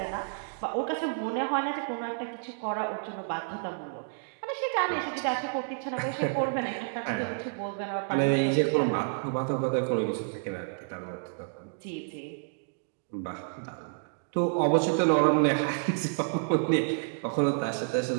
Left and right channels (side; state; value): left; silent; digital silence